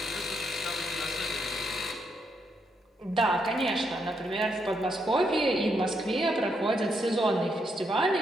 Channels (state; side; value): normal; both; correlation 0.78